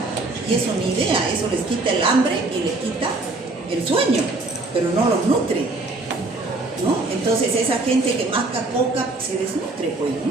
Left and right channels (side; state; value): left; quieter; 3.1 dB